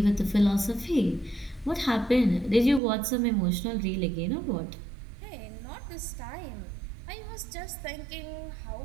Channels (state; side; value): drops out; left; at 2.8 s